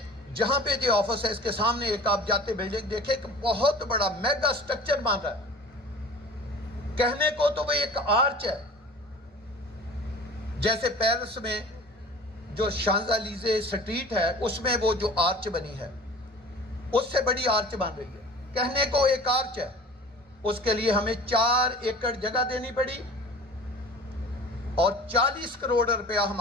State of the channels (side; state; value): both; normal; correlation 0.42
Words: جہاں پہ جو آفس ہے اس کے سامنے ایک آپ جاتے بلڈنگ دیکھیں کہ بہت بڑا میگا سٹرکچر بن رہا ہے. کہنے کو تو وہ ایک آرچ ہے، جیسے پیرس میں جو شانزالیزے سٹریٹ ہے اس میں وہ جو آرچ بنی ہے اس سے بڑی آرچ بن رہی ہے. کہنے کو ایک آرچ ہے، اس کے لیے ہمیں 4 ایکڑ جگہ دینی پڑی اور 40 کروڑ روپیہ